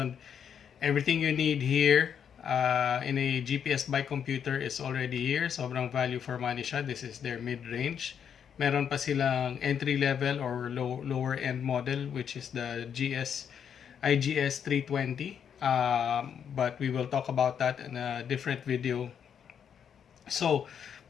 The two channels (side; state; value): right; quieter; 8.0 dB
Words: everything you need here in a GPS bike computer is already here. Sobrang value for money siya. This is their mid-range. Meron pa silang entry level or lower end model, which is the IGS320. But we will talk about that in a different video. So